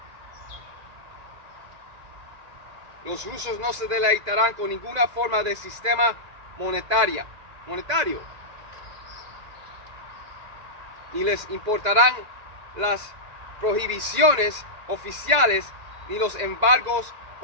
Los rusos no se deleitarán con ninguna forma de sistema monetaria. monetario. Ni les importarán las prohibiciones oficiales, ni los embargos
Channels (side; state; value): left; late; 2.0 ms